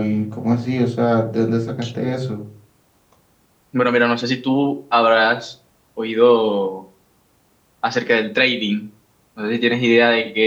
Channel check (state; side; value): identical; both; correlation 1.00